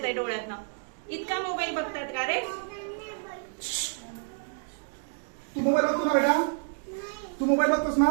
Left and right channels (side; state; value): left; silent; 59 dB below the other